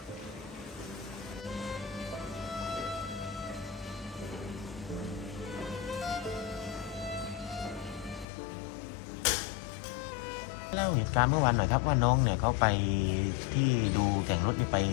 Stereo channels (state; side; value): drops out; right; at 8.2 s